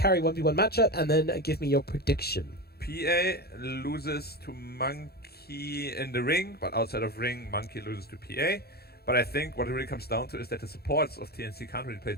carry 1v1 matchup, and then give me your prediction. PA loses to Monkey in the ring, but outside of ring, Monkey loses to PA. But I think what it really comes down to is that the supports of TNC can't really play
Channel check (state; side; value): late; right; 0.46 ms